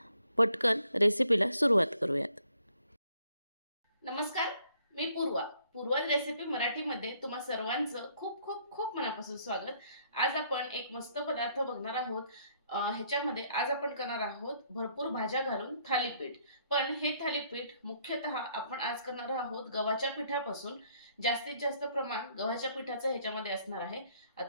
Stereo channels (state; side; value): inverted; both; correlation -0.67